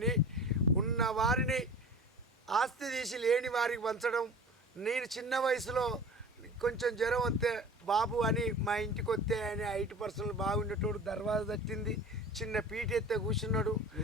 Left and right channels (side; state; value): both; normal; correlation 0.39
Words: ఉన్న వారిని ఆస్తి తీసి లేని వారికి పంచడం. నేను చిన్న వయసులో కొంచెం జ్వరం వస్తే బాబు అని మా ఇంటికి వస్తే ఆయన 8% బాగుండేటోడు. దర్వాజా తట్టింది, చిన్న పీట ఎత్తే కూర్చున్నాడు.